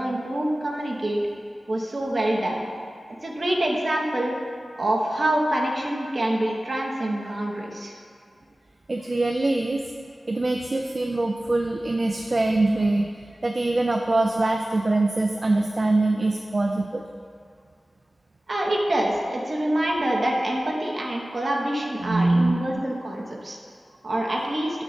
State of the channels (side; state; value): both; normal; correlation 0.97